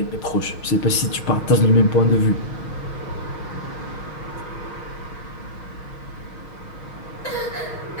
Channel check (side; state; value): right; late; 6.4 ms